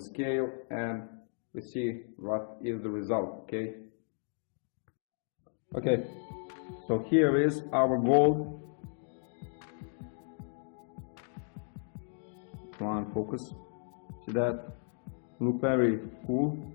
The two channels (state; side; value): silent; right; 55 dB below the other